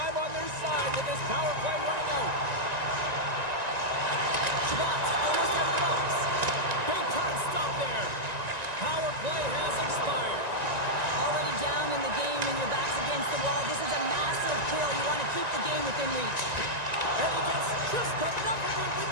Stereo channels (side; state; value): left; late; 1.9 ms